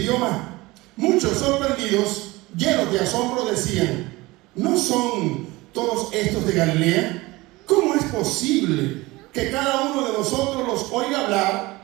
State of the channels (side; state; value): left; quieter; 21.2 dB